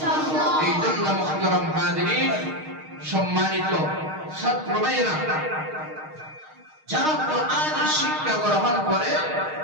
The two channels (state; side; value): late; left; 6.5 ms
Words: এই জন্য মুহতারাম হাজিরিন, সম্মানিত ছাত্র ভাইরা, যারা কোরআনের শিক্ষা গ্রহণ করে